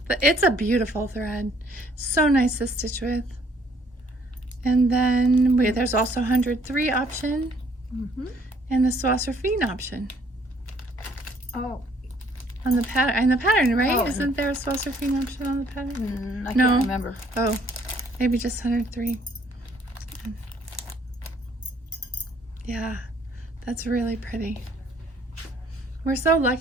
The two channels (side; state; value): both; normal; correlation 0.63